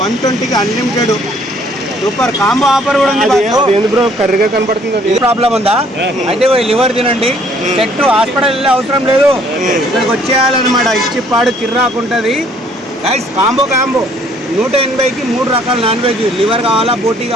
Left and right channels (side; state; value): both; normal; correlation 0.61